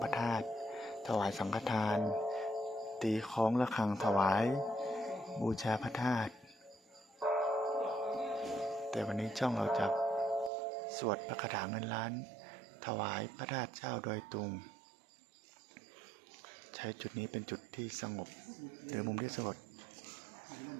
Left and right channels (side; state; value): left; drops out; at 10.5 s